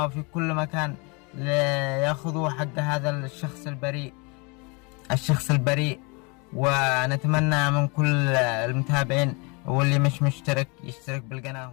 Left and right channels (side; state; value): right; quieter; 30.6 dB